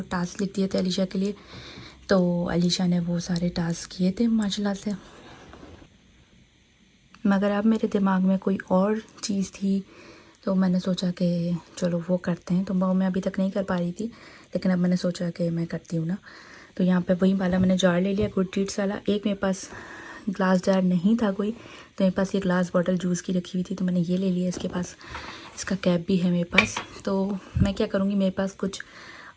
टास्क लिख दिए थे अलीशा के लिए। तो अलीशा ने वो सारे टास्क किए थे माशाल्लाह से, मगर अब मेरे दिमाग में कोई और चीज़ थी, तो मैंने सोचा कि चलो वो करते हैं। तो वो मैं अभी तक नहीं कर पा रही थी, लेकिन अब मैंने सोचा कि मैं करती हूँ ना। तो यहाँ पे वही वाला मैंने जार ले लिया, गुड डीड्स वाला। एक मेरे पास ग्लास जार नहीं था कोई, तो मेरे पास ये ग्लास बॉटल जूस की रखी हुई थी, तो मैंने ये ले लिया। इसके पास इसका कैप भी है मेरे पास। तो मैं क्या करूँगी, मेरे पास कुछ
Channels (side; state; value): both; identical; correlation 1.00